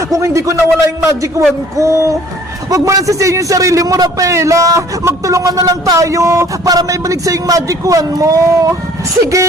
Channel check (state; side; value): normal; both; correlation 0.55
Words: kung hindi ko nawala yung magic wand ko. Huwag mo lang sisihin yung sarili mo, Rafaela. Magtulungan na lang tayo para may balik sa yung magic wand mo.